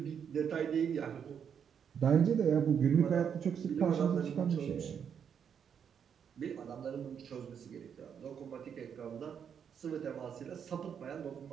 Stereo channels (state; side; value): quieter; left; 7.7 dB